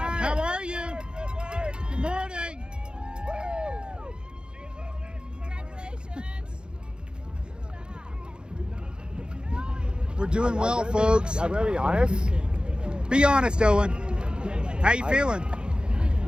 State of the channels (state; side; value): late; left; 0.050 ms